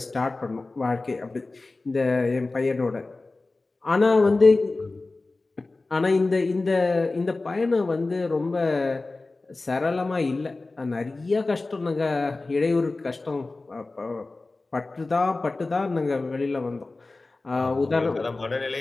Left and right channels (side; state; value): right; quieter; 3.3 dB